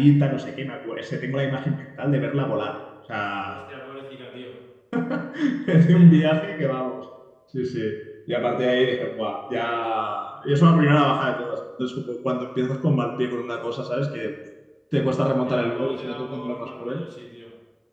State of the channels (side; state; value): both; identical; correlation 1.00